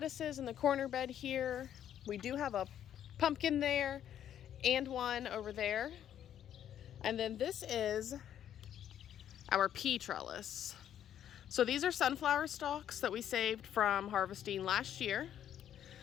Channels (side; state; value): right; quieter; 10.3 dB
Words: in the corner bed here. We do have a pumpkin there and one over there. And then this is our pea trellis. So these are sunflower stalks that we saved from harvesting last year.